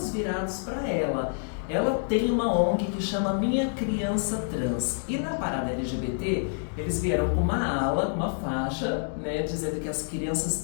virados para ela. Ela tem uma ONG que chama Minha Criança Trans. E na parada LGBT, eles vieram com uma ala, uma faixa, né, dizendo que as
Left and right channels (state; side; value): silent; right; digital silence